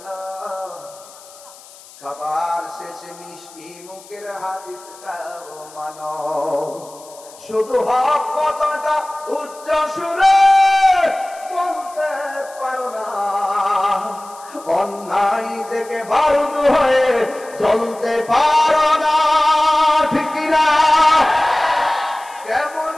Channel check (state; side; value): noise; left; hiss, 22 dB below the sound